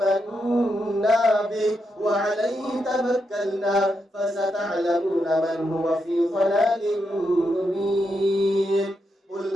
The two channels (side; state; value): both; normal; correlation 0.83